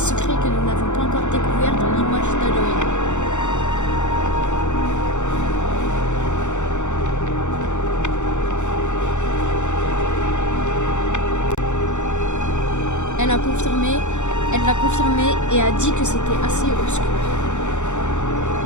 que nous n'avons pas encore découvert dans l'image d'Halloween. Elle l'a confirmé et a dit que c'était assez obscur.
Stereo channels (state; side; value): late; right; 0.84 ms